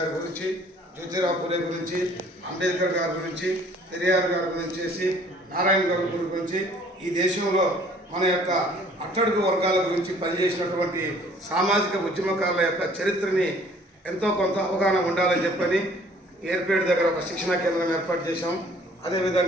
గురించి, జ్యోతిరావు పూలే గురించి, అంబేద్కర్ గారి గురించి, పెరియార్ గారి గురించి, నారాయణ గారి గురించి ఈ దేశంలో మన యొక్క అట్టడుగు వర్గాల గురించి పనిచేసినటువంటి సామాజిక ఉద్యమకారుల యొక్క చరిత్రని ఎంతో కొంత అవగాహన ఉండాలని చెప్పని ఏర్పేట దగ్గర ఒక శిక్షణా కేంద్రం ఏర్పాటు చేశాం.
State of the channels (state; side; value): normal; both; correlation 0.56